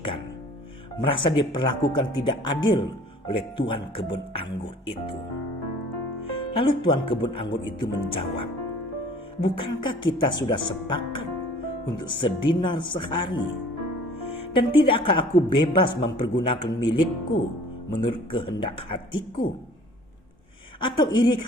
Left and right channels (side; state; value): both; normal; correlation 0.50